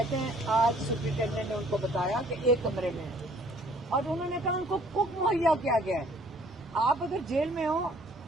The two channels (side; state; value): both; normal; correlation 0.58